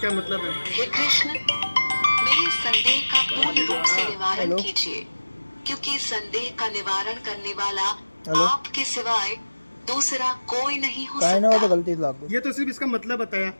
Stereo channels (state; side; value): inverted; both; correlation -1.00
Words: मतलब है। हे कृष्ण, मेरे संदेह का पूर्ण रूप से निवारण कीजिए, क्योंकि संदेह का निवारण करने वाला आपके सिवाय दूसरा कोई नहीं हो सकता। ये तो सिर्फ इसका मतलब बताया।